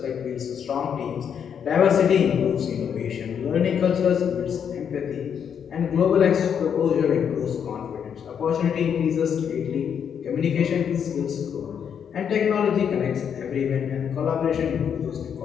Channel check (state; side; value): quieter; right; 7.9 dB